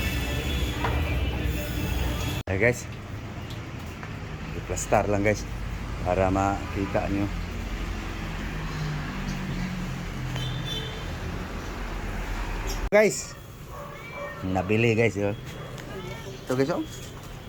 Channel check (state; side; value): identical; both; correlation 1.00